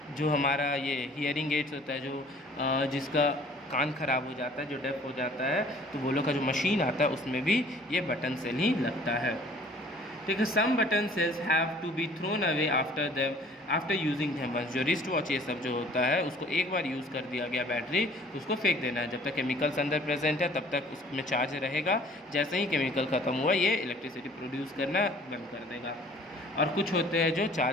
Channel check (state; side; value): normal; both; correlation 0.53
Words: जो हमारा ये हियरिंग एड्स होता है, जो जिसका कान ख़राब हो जाता है, जो डेफ हो जाता है, तो वो लोग का जो मशीन आता है उसमें भी ये बटन सेल ही लगता है। ठीक है, some button cells have to be thrown away after using them once. जो रिस्ट वॉच ये सब जो होता है उसको एक बार यूज़ कर दिया गया बैटरी, उसको फेंक देना है। जब तक केमिकल्स अंदर प्रेजेंट है तब तक उसमें चार्ज रहेगा, जैसे ही केमिकल ख़त्म हुआ ये इलेक्ट्रिसिटी प्रोड्यूस करना बंद कर देगा। और कुछ होते हैं जो